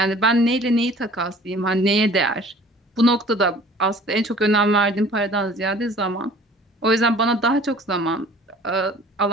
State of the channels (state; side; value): normal; both; correlation 0.49